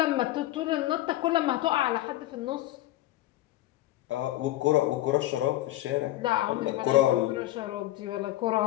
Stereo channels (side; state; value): right; quieter; 15.6 dB